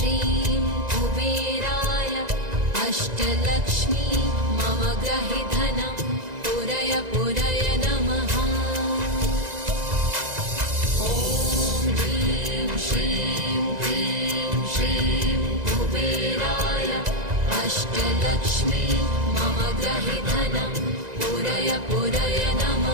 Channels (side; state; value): left; late; 1.9 ms